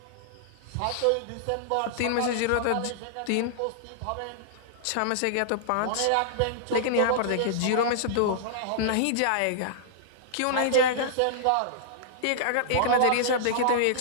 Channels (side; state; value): both; different; correlation -0.02